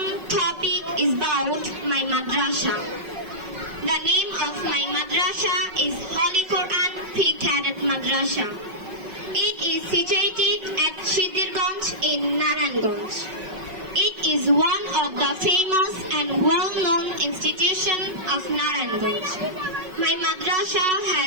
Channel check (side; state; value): left; late; 5.4 ms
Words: topic is about my madrasa. The name of my madrasa is Holy Quran Pre-Cadet Madrasa. It is situated at Shidirganj in Narayanganj. It is one of the famous and well-known institutions of Narayanganj. My madrasa